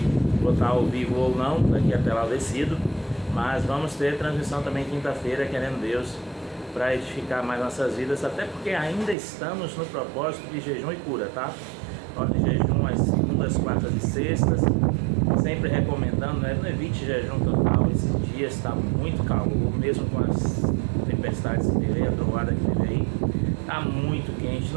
vou estar ao vivo ou não, daqui até lá decido, mas vamos ter transmissão também quinta-feira, querendo Deus, para edificar mais nossas vidas, até porque ainda estamos no propósito de jejum e cura, tá? Nós de jejum às segundas, quartas e sextas, sempre recomendando, não evite jejum total, esses dias está muito calor, mesmo com as tempestades que teve aí, a trovoada que teve aí, está muito quente,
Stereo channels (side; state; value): left; drops out; at 9.2 s